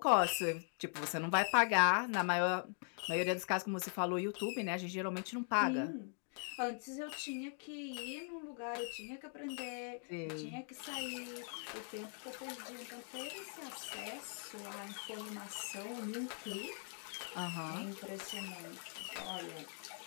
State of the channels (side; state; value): right; silent; 50 dB below the other